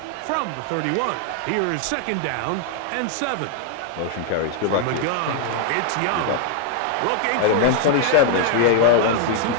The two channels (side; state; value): both; different; correlation 0.00